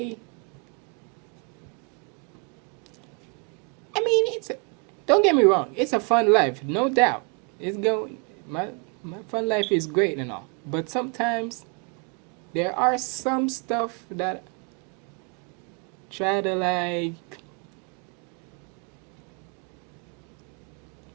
I mean, don't get me wrong, it's a fun life, no doubt. It's going my fun life is great and all, but sometimes there are some stuff that try to like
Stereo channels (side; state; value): left; quieter; 35.1 dB